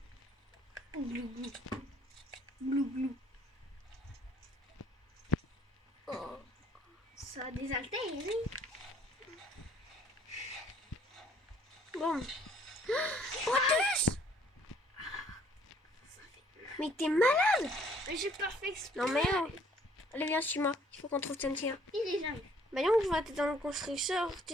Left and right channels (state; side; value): normal; both; correlation 0.61